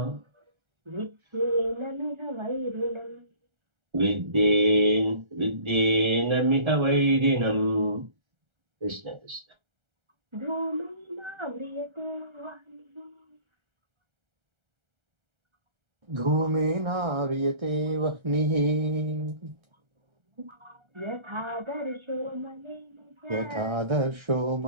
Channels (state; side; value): late; left; 1.3 ms